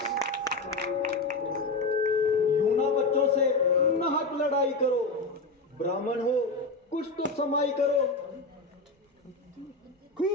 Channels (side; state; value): right; quieter; 3.3 dB